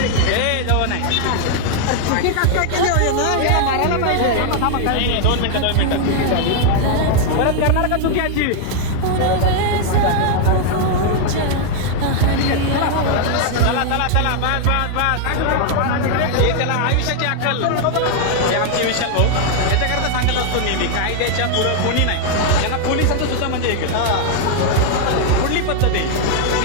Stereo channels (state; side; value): different; both; correlation 0.00